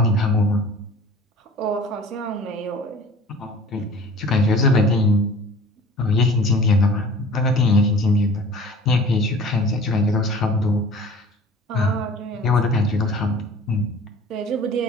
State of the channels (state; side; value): normal; both; correlation 0.45